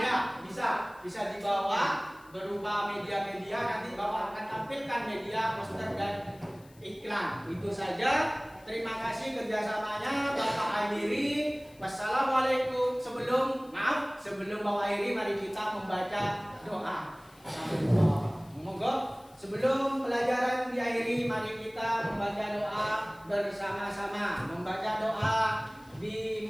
bisa dibawa berupa media-media. Nanti Bapak akan tampilkan media poster dan iklan. Itu saja. Terima kasih kerjasamanya Bapak Akhiri. Wassalamualaikum. Sebelum Bapak Akhiri, mari kita membaca doa. Monggo. Sebelum pelajaran diakhiri, mari kita membaca doa bersama-sama. Membaca doa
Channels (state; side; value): noise; left; hiss, 28 dB below the sound